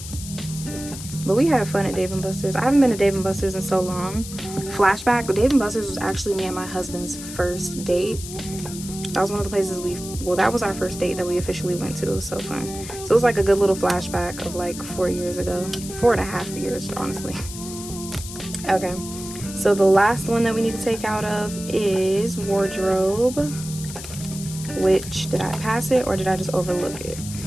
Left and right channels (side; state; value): left; noise; hiss, 11 dB below the sound